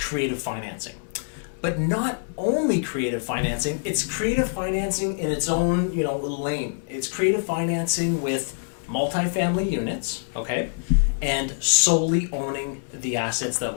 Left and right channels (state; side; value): silent; right; digital silence